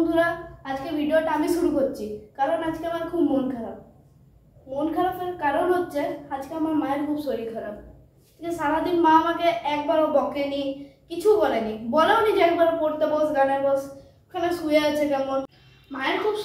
আজকে ভিডিওটা আমি শুরু করছি কারণ আজকে আমার খুব মন খারাপের কারণ হচ্ছে আজকে আমার মায়ের খুব শরীর খারাপ। যে সারাদিন মা আমাকে একবারও বকেনি, কিছু বলেনি, বলেও নি যে একবারও পড়তে বস, গানে বস, ওখানে শুয়ে আছে কেমন। মায়ের খুব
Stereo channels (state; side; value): identical; both; correlation 1.00